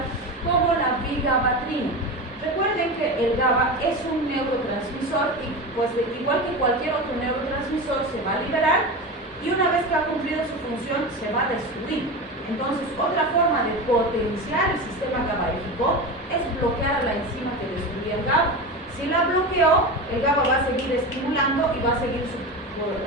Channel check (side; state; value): both; normal; correlation 0.24